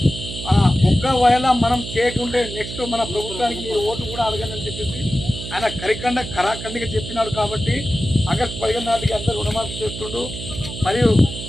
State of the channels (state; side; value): noise; right; hum, 9 dB below the sound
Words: ఒక్కవేళ మనం చేయకుంటే నెక్స్ట్ మన ప్రభుత్వానికి మీరు ఓటు కూడా అడగనని చెప్పేసి ఆయన కరాఖండిగా చెప్పినాడు. కాబట్టి ఆగస్టు 15 నాటికి అందరూ రుణమాఫీ చేస్తుండు. మరియు